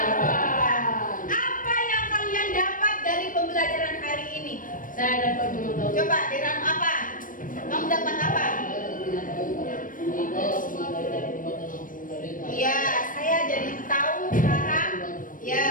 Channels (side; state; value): right; late; 0.39 ms